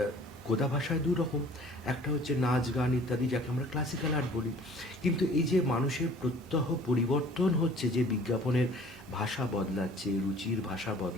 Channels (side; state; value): both; normal; correlation 0.50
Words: গোদা ভাষায় 2 রকম, একটা হচ্ছে নাচ গান ইত্যাদি, যাকে আমরা ক্লাসিক্যাল আর্ট বলি। কিন্তু এই যে মানুষের প্রত্যহ পরিবর্তন হচ্ছে, যে বিজ্ঞাপনের ভাষা বদলাচ্ছে, রুচির ভাষা